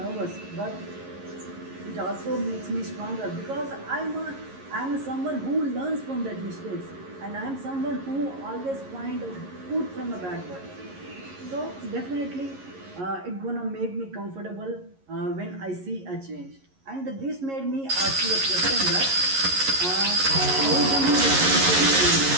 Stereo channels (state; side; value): late; left; 11 ms